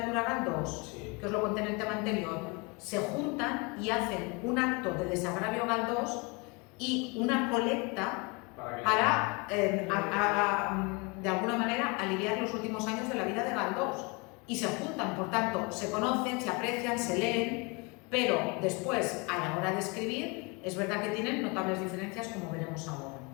a Galdós? Sí. Que os lo conté en el tema anterior. Se juntan y hacen un acto de desagravio a Galdós y una colecta para, de alguna manera, aliviar los últimos años de la vida de Galdós. Y se juntan, por tanto, se conocen, se aprecian, se leen, pero después, a la hora de escribir, es verdad que tienen notables diferencias, como veremos ahora.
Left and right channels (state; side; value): quieter; right; 29.2 dB